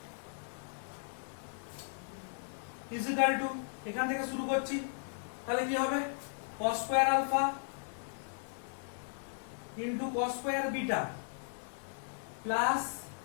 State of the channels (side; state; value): right; silent; digital silence